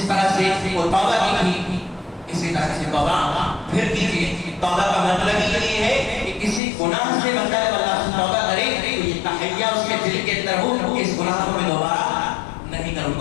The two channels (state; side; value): drops out; right; at 6.6 s